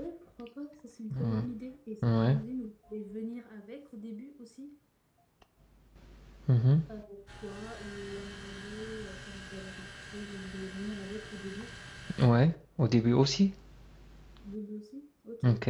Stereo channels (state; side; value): identical; both; correlation 1.00